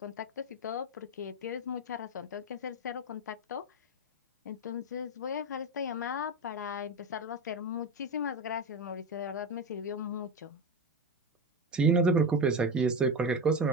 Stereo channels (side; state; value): both; normal; correlation 0.19